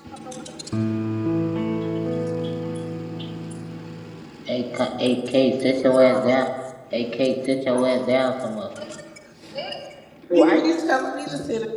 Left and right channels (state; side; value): identical; both; correlation 1.00